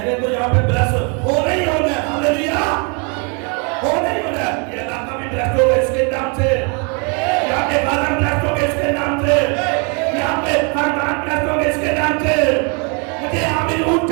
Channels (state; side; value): quieter; left; 34.9 dB